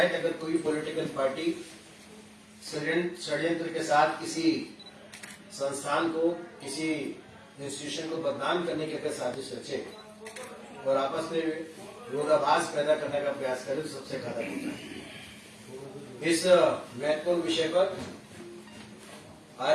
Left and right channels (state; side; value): identical; both; correlation 1.00